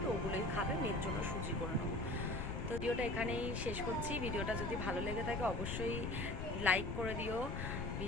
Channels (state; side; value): noise; left; rumble, 3 dB below the sound